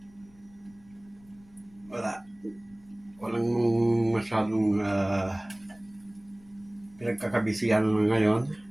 Wala. Walang masyadong pinagkakabisihan ngayon.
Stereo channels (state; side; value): noise; left; rumble, 27 dB below the sound